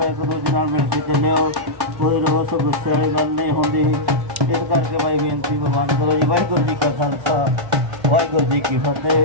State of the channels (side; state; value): left; late; 1.1 ms